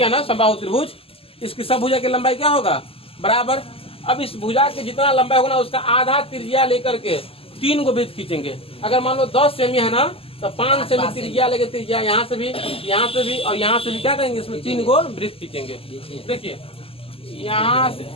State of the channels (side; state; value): right; late; 0.27 ms